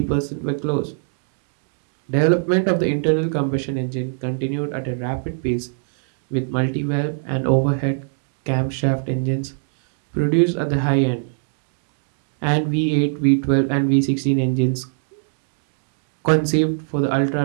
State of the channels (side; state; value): left; silent; digital silence